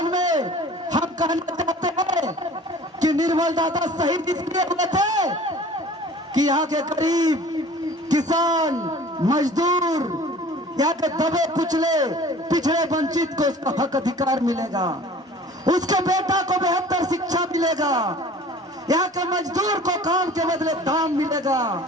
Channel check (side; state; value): both; normal; correlation 0.46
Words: में हम कहना चाहते हैं कि निर्मल दादा शहीद इसलिए हुए थे कि यहाँ के गरीब, किसान, मजदूर, यहाँ के दबे कुचले, पिछड़े, वंचित को उसका हक अधिकार मिलेगा, उसके बेटा को बेहतर शिक्षा मिलेगा, यहाँ के मजदूर को काम के बदले दाम मिलेगा।